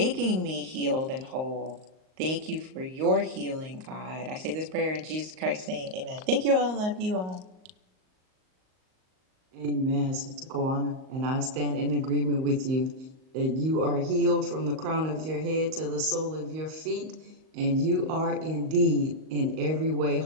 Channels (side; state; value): left; late; 38 ms